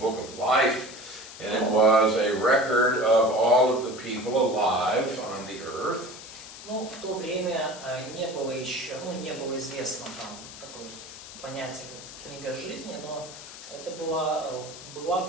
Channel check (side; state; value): left; noise; hiss, 14 dB below the sound